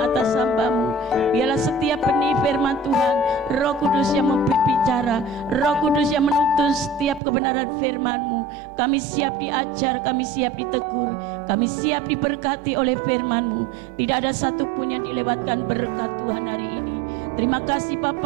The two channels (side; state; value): left; drops out; at 7.2 s